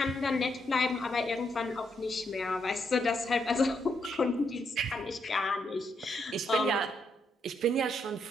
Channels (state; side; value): normal; both; correlation 0.78